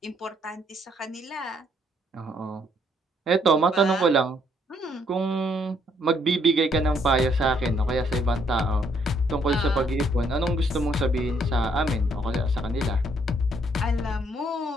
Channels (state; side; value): normal; both; correlation 0.69